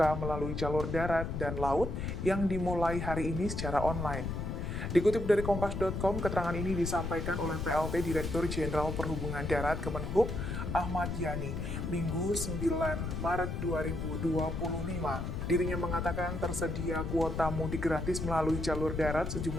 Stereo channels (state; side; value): noise; left; rumble, 4 dB below the sound